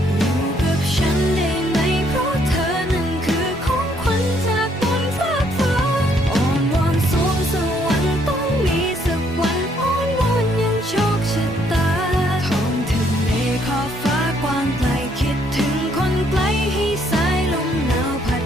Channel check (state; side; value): normal; both; correlation 0.68